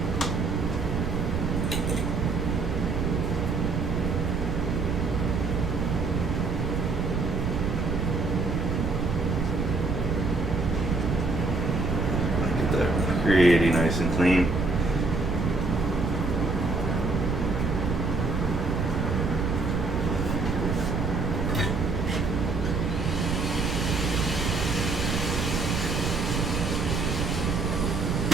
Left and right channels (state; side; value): noise; right; rumble, 2 dB below the sound